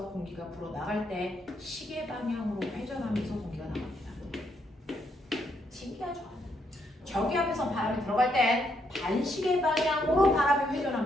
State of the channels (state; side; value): normal; both; correlation 0.76